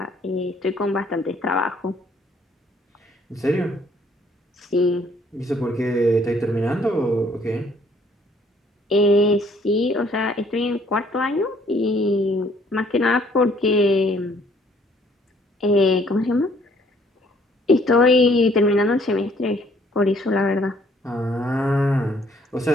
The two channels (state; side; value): normal; both; correlation 0.62